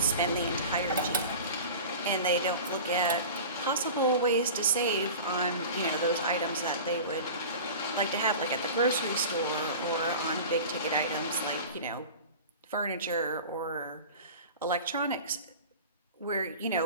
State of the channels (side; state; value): both; inverted; correlation -0.36